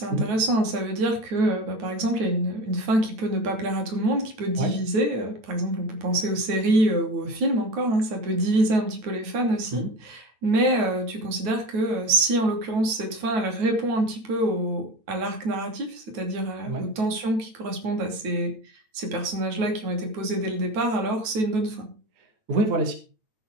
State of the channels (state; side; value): late; left; 9.3 ms